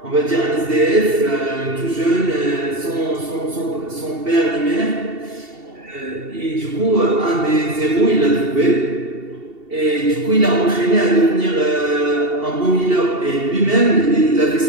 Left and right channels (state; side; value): late; left; 2.7 ms